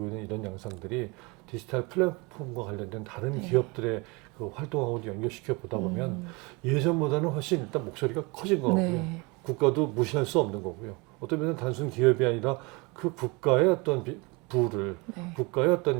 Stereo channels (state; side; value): quieter; left; 27.3 dB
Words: 있는 이런 양상들이 디지털 플랫폼과 관련된 다른 기업들의 그 활동하고도 연결시켜 보다 보면 예전보다는 훨씬 일단 목소리가 커진 것 같고요. 네. 국가도 무시할 수 없는 거고요. 어떤 면은 단순 기업이 아니라 그 국가의 어떤 부를 네. 국가의 어떤